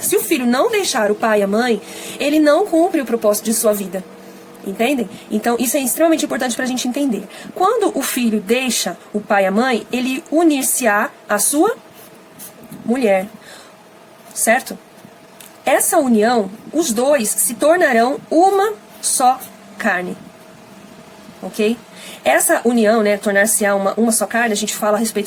filho não deixar o pai e a mãe, ele não cumpre o propósito de sua vida. Entendem? Então, isso é extremamente importante para a gente entender. Quando o filho deixa o pai e a mãe, ele unir-se-á à sua mulher. Certo? Essa união, os dois se tornarão uma só carne. ok? Essa união, né, tornar-se-á uma só carne, a gente fala a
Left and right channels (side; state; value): both; identical; correlation 1.00